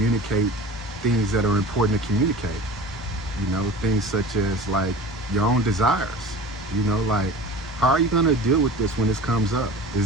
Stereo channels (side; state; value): both; normal; correlation 0.37